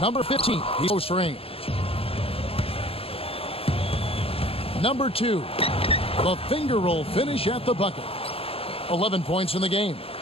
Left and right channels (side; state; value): right; late; 0.27 ms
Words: Number 15, he's close range. Number 2, the finger roll finish at the bucket. 11 points in the game.